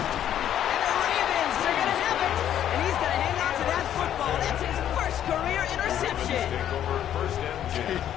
And the Ravens, they're going to have it. And he's going to hang on to that football. That's his first career interception.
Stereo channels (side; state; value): right; quieter; 10.7 dB